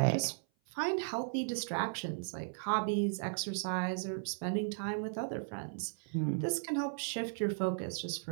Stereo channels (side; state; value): left; silent; 54 dB below the other